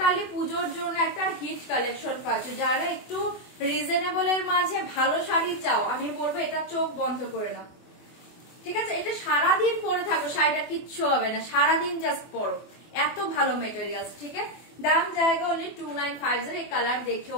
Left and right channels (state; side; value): late; right; 24 ms